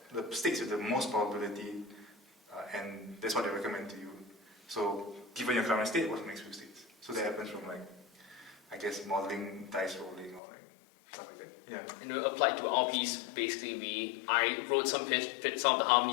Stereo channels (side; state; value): right; drops out; at 10.4 s